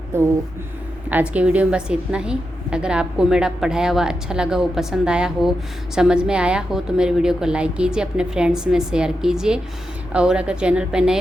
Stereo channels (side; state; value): both; normal; correlation 0.88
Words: तो आज के वीडियो में बस इतना ही। अगर आपको मेरा पढ़ाया हुआ अच्छा लगा हो, पसंद आया हो, समझ में आया हो तो मेरे वीडियो को लाइक कीजिए, अपने फ्रेंड्स में शेयर कीजिए, और अगर चैनल पर नए